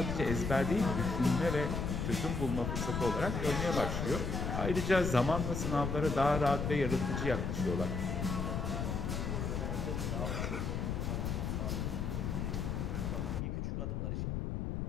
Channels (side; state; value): left; noise; rumble, 1 dB below the sound